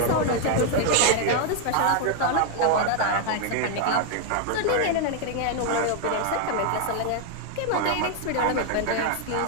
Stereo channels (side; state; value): both; different; correlation 0.00